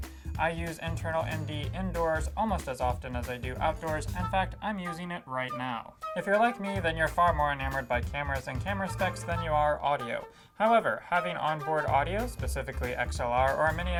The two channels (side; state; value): both; identical; correlation 1.00